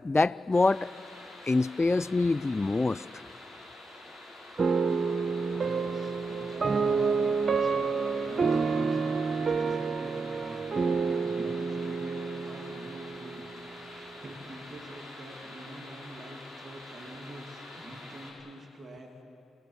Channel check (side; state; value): both; normal; correlation 0.86